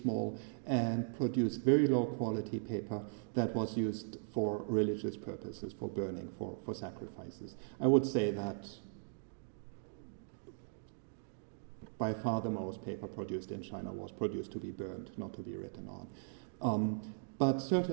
and produced very low quality paper that was used for religious purposes, for burning, for sacrifices. I would say that by far the most paper produced in China was produced to be burned, not to be written on. But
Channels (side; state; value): left; silent; digital silence